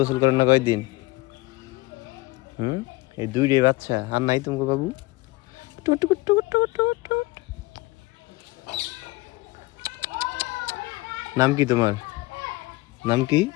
করেন না কয়দিন এই দুইটাই বাচ্চা আর নাই তোমাকে বাবু নাম কি তোমার নাম কি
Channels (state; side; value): quieter; right; 21.1 dB